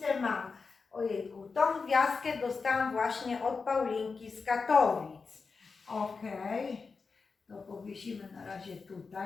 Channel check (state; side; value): quieter; right; 4.7 dB